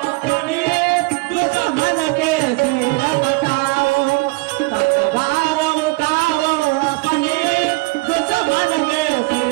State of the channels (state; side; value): quieter; left; 25.8 dB